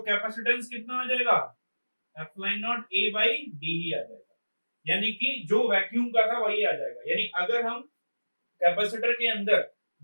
कैपेसिटेंस कितना आ जाएगा? Epsilon naught A by D ही आ जाएगा, यानी कि जो वैक्यूम का था वही आ जाएगा। यानी अगर हम कैपेसिटर के अंदर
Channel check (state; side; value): inverted; both; correlation -1.00